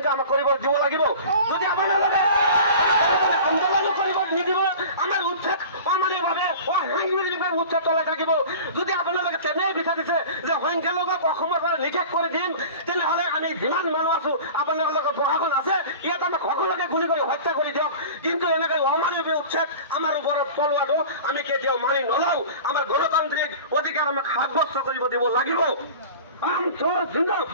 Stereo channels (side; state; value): both; inverted; correlation -0.38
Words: আমাক কৰিব দিব লাগিব। যদি আপোনালোকে আন্দোলন কৰিব নিদিব, আমাৰ উচ্ছেদ অমানৱীয়ভাৱে অসাংবিধানিকভাৱে উচ্ছেদ চলাই থাকিব। যদি আপোনালোকে তেনেই বিচাৰিছে যে সংখ্যালঘুক অসমৰ পৰা নিষেধ কৰি দিম, তেনেহ'লে আমি যিমান মানুহ আছো আপোনালোকৰ প্ৰশাসন আছে, ইয়াত আমাক সকলোকে গুলি কৰি হত্যা কৰি দিয়ক। কিন্তু এনেকৈ অমানৱীয় উচ্ছেদ আমাৰ ওপৰত চলোৱাটো আমি কেতিয়াও মানি নলওঁ। আমাৰ গণতান্ত্ৰিক অধিকাৰ আমাক সাব্যস্ত কৰিব দিব লাগিব।